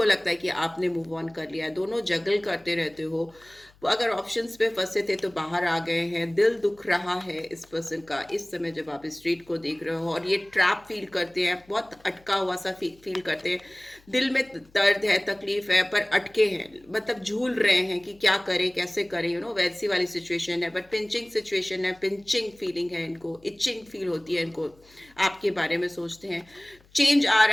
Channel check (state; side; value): noise; left; hum, 29 dB below the sound